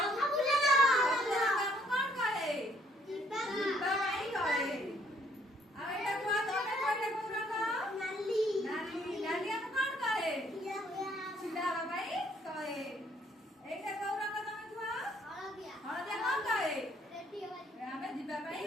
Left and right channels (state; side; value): normal; both; correlation 0.65